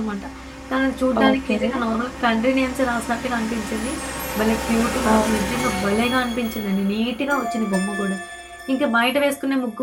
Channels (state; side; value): identical; both; correlation 1.00